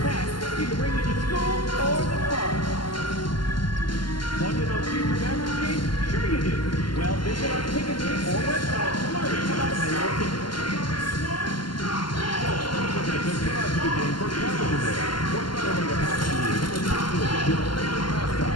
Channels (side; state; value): right; late; 0.71 ms